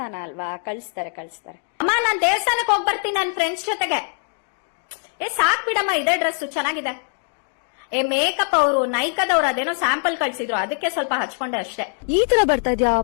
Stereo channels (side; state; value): right; silent; 56 dB below the other